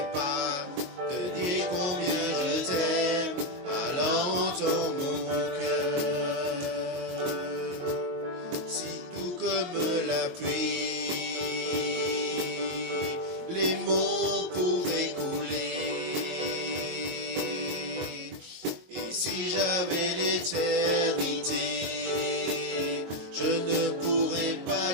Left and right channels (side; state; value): left; late; 22 ms